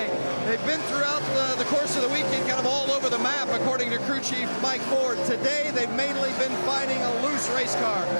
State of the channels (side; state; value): both; inverted; correlation -1.00